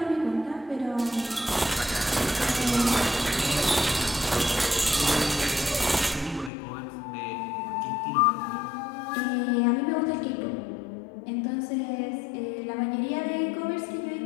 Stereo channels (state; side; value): drops out; right; at 6.5 s